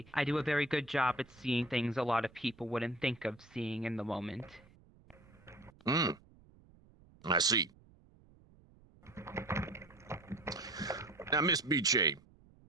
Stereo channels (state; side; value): noise; right; rumble, 26 dB below the sound